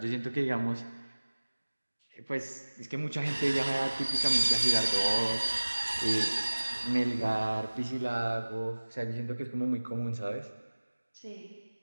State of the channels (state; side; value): inverted; both; correlation -1.00